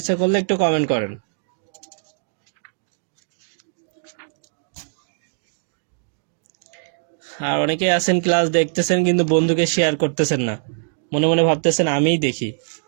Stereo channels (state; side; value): silent; left; digital silence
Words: করলে একটু কমেন্ট করেন। আর অনেকেই আছেন ক্লাস দেখতেছেন কিন্তু বন্ধুকে শেয়ার করতেছেন না, মনে মনে ভাবতেছেন আমিই দেখি।